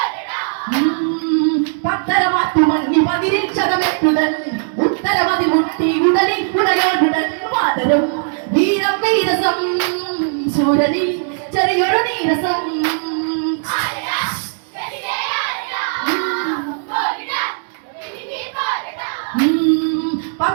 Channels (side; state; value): left; silent; digital silence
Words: പത്തരമാറ്റി മങ്ങി പതിരിക്ഷതമേറ്റുടൻ ഉത്തരവതി മുട്ടി ഉടലിൽ ഉടയോടുടൻ വാനരം വീരം വീരസം ശൂരനിൽ ചെറിയൊരു നീരസം